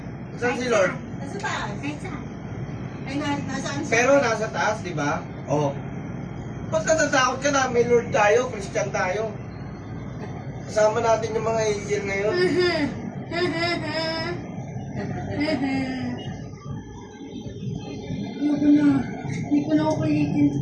Saan si Lord? Nasa taas. Kahit saan. Ay, nasaan siya? Pero nasa taas, di ba? Oo. Ba't natatakot ka na? May Lord tayo, Christian tayo. Kasama natin yung mga angel ngayon. Ayoko na. Hindi ko na ako kulitin.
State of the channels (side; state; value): both; identical; correlation 1.00